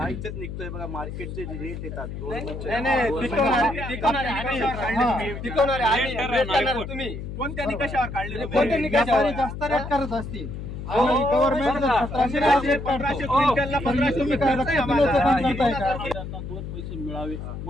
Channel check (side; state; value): left; noise; hum, 8 dB below the sound